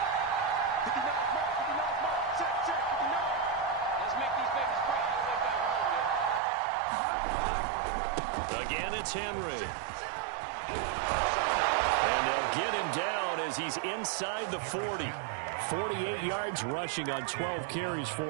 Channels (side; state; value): left; drops out; at 6.4 s